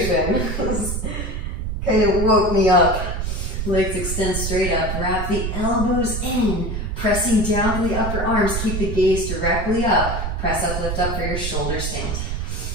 kind of woke me up. Legs extend straight up. Wrap the elbows in, pressing down to the upper arms. Keep the gaze directly up. Press up, lift up for your shoulder stand.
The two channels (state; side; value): noise; right; rumble, 3 dB below the sound